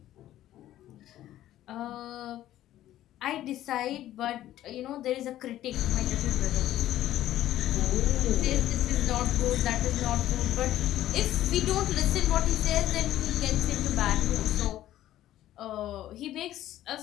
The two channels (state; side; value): quieter; right; 13.4 dB